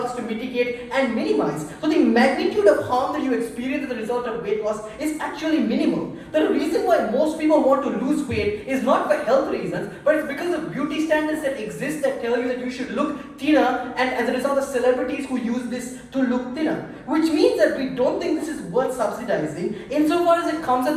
to mitigate and minimize. So the magnitude of harm that you experience as a result of weight loss is actually minimal. The reason why most people want to lose weight is not for health reasons, but it's because of beauty standards that exist that tell you that you should look thinner, and as a result of celebrities who use this to look thinner. Which means that we don't think this is worth subsidizing, insofar as it comes at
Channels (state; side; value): identical; both; correlation 1.00